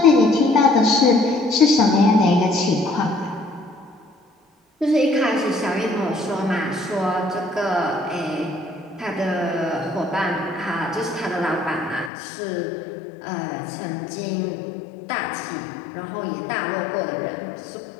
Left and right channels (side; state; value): right; drops out; at 12.1 s